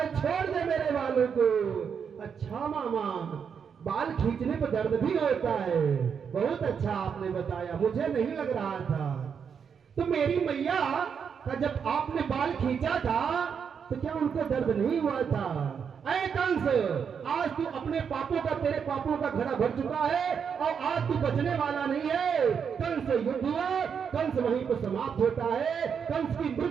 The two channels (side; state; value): left; quieter; 6.9 dB